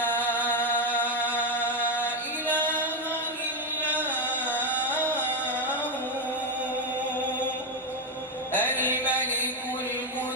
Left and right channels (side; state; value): both; normal; correlation 0.07